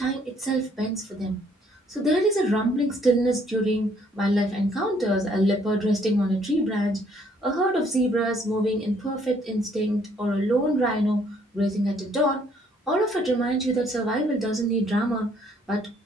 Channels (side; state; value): both; normal; correlation 0.65